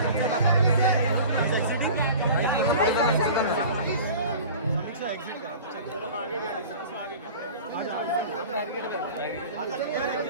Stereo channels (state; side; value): inverted; both; correlation -0.40